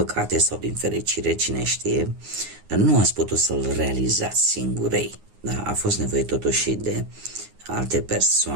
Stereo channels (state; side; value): late; left; 9.6 ms